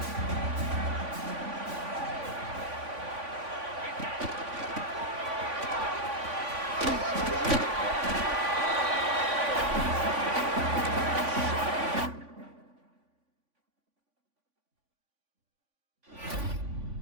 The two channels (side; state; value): left; late; 3.5 ms